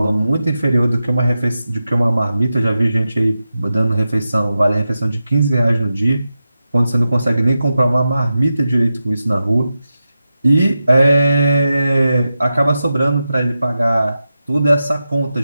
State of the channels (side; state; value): both; inverted; correlation -0.91